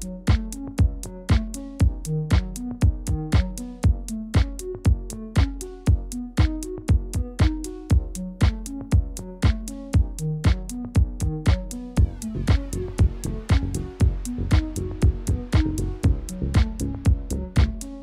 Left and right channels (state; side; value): identical; both; correlation 1.00